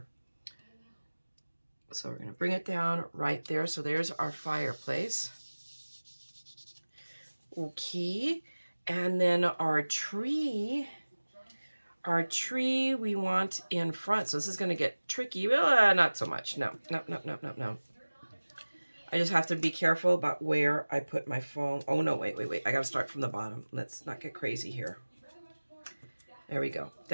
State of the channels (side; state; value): both; inverted; correlation -1.00